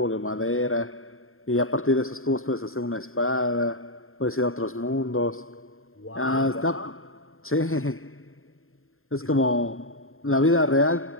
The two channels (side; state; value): right; late; 0.61 ms